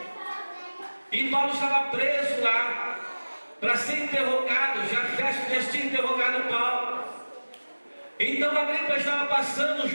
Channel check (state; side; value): inverted; both; correlation -1.00